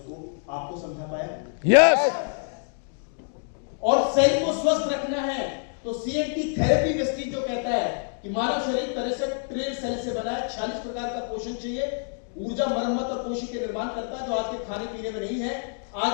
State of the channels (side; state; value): right; silent; 55 dB below the other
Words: आपको समझा पाया? यस। और सेल को स्वस्थ रखना है तो सीएनटी थेरेपी वेस्टीज जो कहता है कि मानव शरीर 63 ट्रिलियन सेल से बना है, 46 प्रकार का पोषण चाहिए, ऊर्जा, मरम्मत और कोशिका के निर्माण करता है, जो आज के खाने पीने में नहीं है।